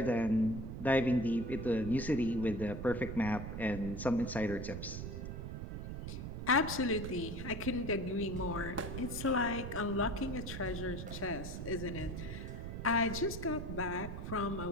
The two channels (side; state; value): right; noise; rumble, 6 dB below the sound